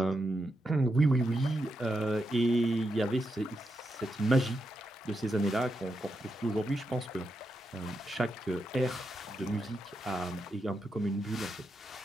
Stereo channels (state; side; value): normal; both; correlation 0.85